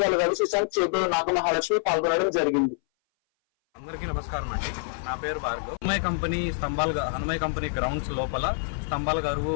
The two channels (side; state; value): right; silent; 58 dB below the other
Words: రవి శశాంక్, చేపూరు నాగమహాలక్ష్మి పాల్గొనడం జరిగింది. అందరికీ నమస్కారం అండి. నా పేరు భార్గవ్. హనుమయ్య కంపెనీ గ్రౌండ్స్ లోపల స్తంభాల గరువు